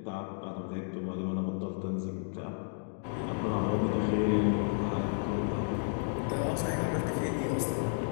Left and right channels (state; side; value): silent; right; 56 dB below the other